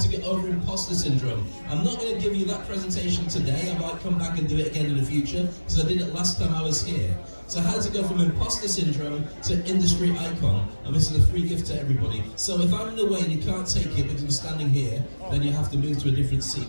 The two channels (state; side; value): inverted; both; correlation -1.00